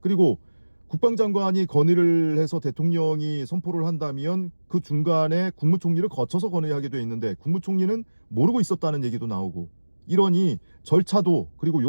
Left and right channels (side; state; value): both; inverted; correlation -1.00